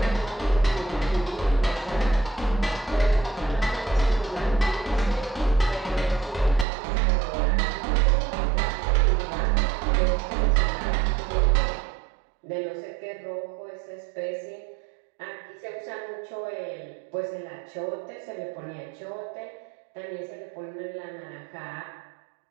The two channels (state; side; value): drops out; left; at 6.7 s